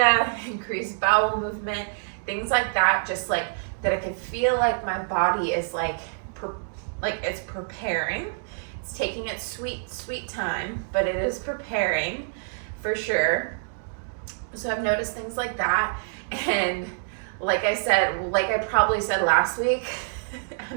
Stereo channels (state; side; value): silent; left; digital silence